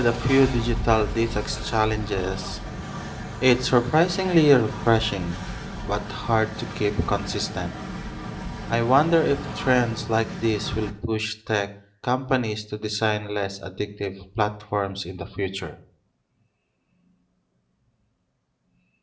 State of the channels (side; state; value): both; identical; correlation 1.00